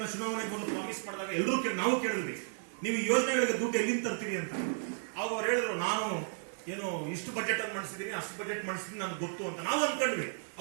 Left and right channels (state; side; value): silent; left; digital silence